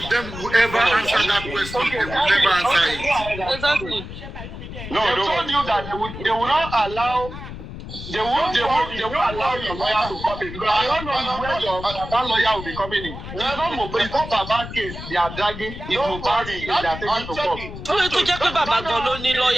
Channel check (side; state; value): left; noise; rumble, 10 dB below the sound